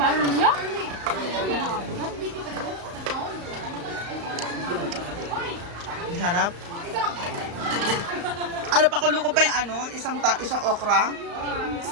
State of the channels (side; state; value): left; late; 35 ms